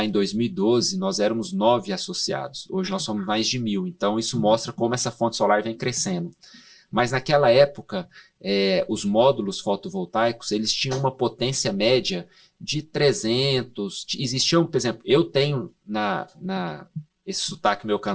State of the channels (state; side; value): identical; both; correlation 1.00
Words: em 2012, nós éramos 9 associados. Hoje nós somos mais de 1.000. Então isso mostra como essa fonte solar vem crescendo. Mas naquela época, os módulos fotovoltaicos, eles tinham uma potência média de 300. Existiam, por exemplo, eu tenho esse sotaque meu